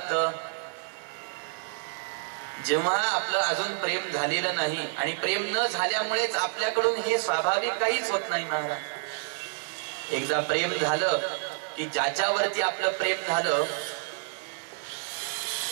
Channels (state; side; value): silent; left; 59 dB below the other